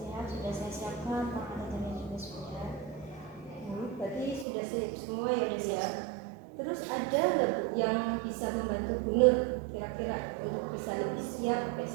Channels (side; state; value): left; drops out; at 4.5 s